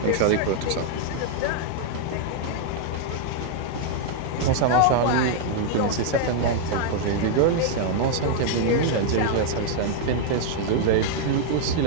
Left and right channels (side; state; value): both; different; correlation 0.00